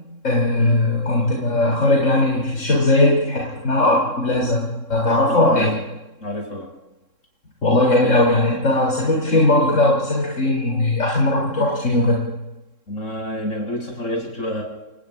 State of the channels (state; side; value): late; right; 3.7 ms